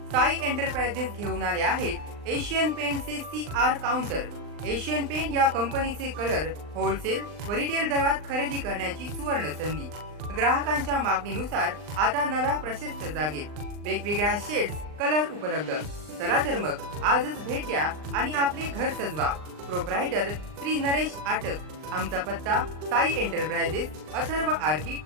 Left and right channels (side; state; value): left; late; 39 ms